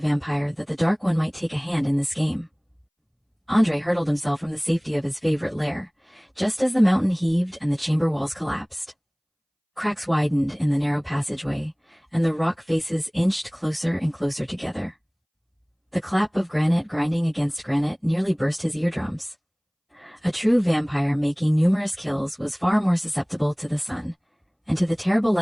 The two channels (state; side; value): identical; both; correlation 1.00